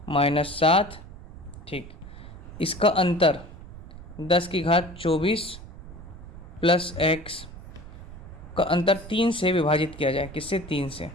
-7, ठीक, इसका अंतर 10 की घात 24 + x का अंतर 3 से विभाजित किया जाए, किससे 3 से।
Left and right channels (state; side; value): noise; right; rumble, 15 dB below the sound